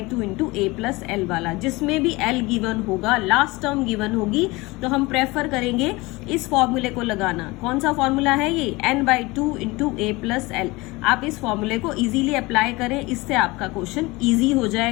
into a plus l वाला, जिसमें भी l गिवन होगा, लास्ट टर्म गिवन होगी, तो हम प्रेफर करेंगे इस फॉर्मूले को लगाना। कौन सा फॉर्मूला है ये, n/2 into a plus l। आप इस फॉर्मूले को इजीली अप्लाई करें, इससे आपका क्वेश्चन इजी हो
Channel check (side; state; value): right; quieter; 22.7 dB